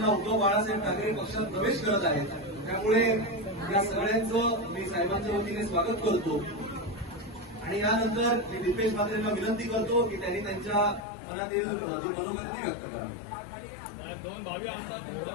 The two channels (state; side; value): drops out; right; at 11.0 s